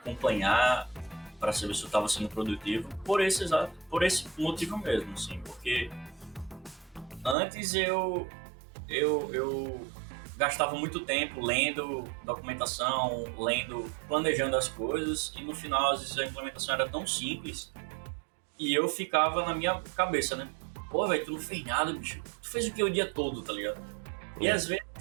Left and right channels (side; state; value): left; drops out; at 7.4 s